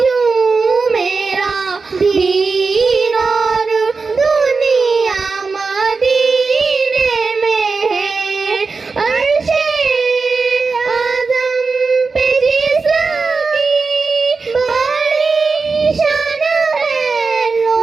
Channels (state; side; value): quieter; left; 4.4 dB